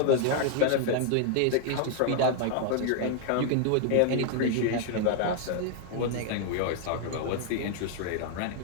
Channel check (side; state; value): both; different; correlation 0.00